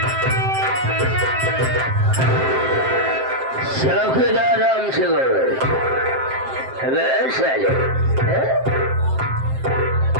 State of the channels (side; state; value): left; late; 7.6 ms